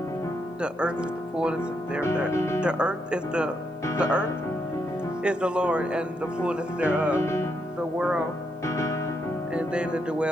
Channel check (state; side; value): normal; both; correlation 0.79